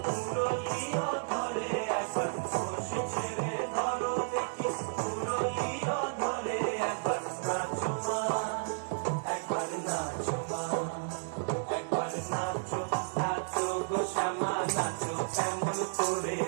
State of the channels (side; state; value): left; silent; digital silence